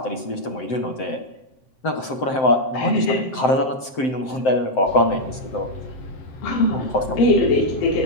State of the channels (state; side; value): late; right; 7.7 ms